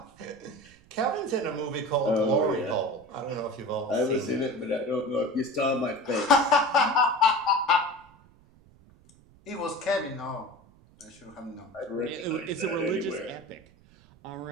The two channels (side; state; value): right; noise; rumble, 27 dB below the sound